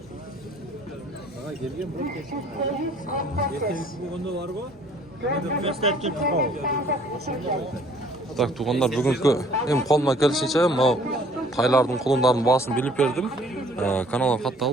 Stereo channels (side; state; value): both; normal; correlation 0.57